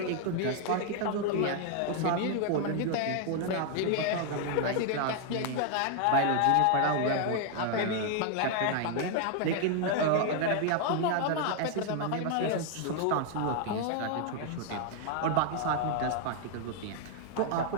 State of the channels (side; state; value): both; different; correlation 0.00